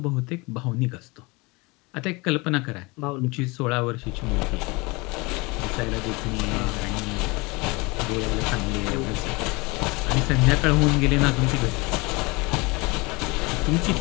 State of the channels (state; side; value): quieter; right; 25.7 dB